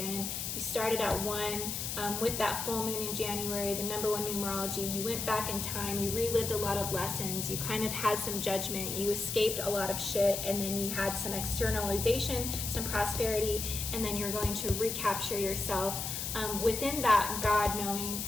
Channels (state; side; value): noise; left; hiss, 3 dB below the sound